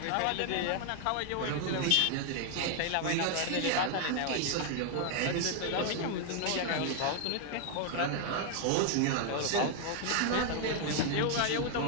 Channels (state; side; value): different; both; correlation 0.00